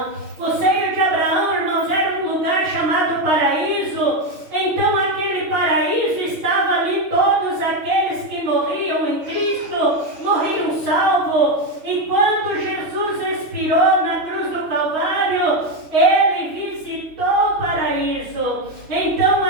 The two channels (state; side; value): late; left; 6.6 ms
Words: O seio de Abraão, irmãos, era um lugar chamado paraíso. Então aquele paraíso estava ali, todos aqueles que morriam em Cristo, morriam salvos. E quando Jesus expirou na cruz do Calvário, ele visitou o paraíso. Então